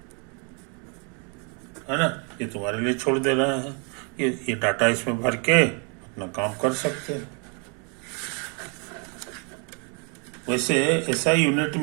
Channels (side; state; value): left; quieter; 36.0 dB